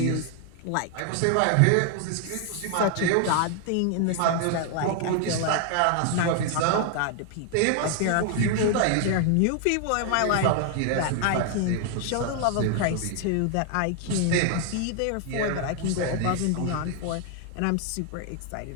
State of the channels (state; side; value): different; both; correlation 0.00